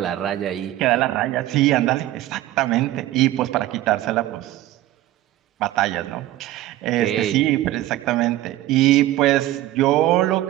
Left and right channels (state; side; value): quieter; left; 15.0 dB